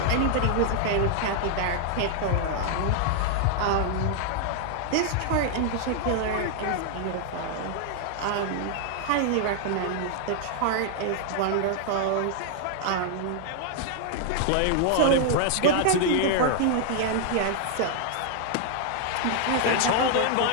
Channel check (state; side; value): different; both; correlation 0.00